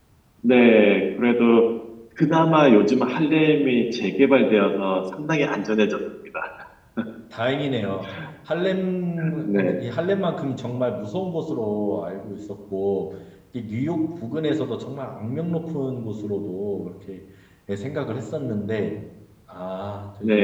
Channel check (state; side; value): identical; both; correlation 1.00